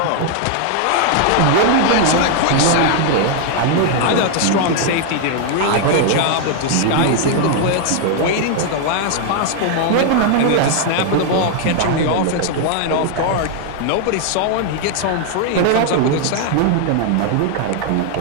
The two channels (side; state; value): both; different; correlation 0.00